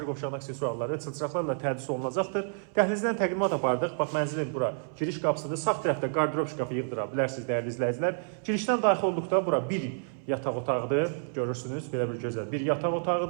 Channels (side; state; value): left; silent; 58 dB below the other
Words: qovşağının aksesuarları, çılçıraqlarla tədris olunacaqdır. Dəhlizdən təqdimat apardıq. Bax, mənzilin bura giriş qapısında sağ tərəfdə qardirob şkafı yığdıra bilərsiniz, dəyərli izləyicilər. Girişdən daxil olduqda bura bir yataq otağıdır. Görürsünüz, belə bir gözəl bir yataq